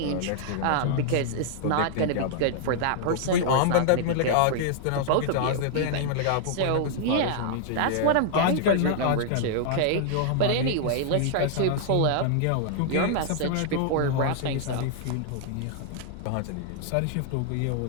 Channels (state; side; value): different; both; correlation -0.01